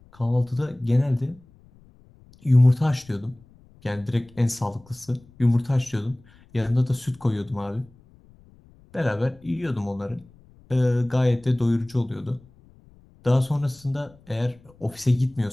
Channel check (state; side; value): noise; left; rumble, 27 dB below the sound